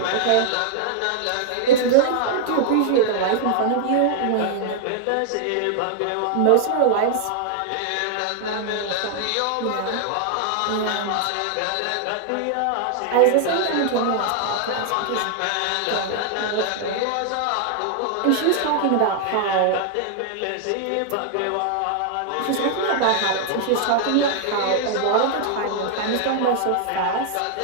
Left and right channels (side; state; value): both; different; correlation 0.00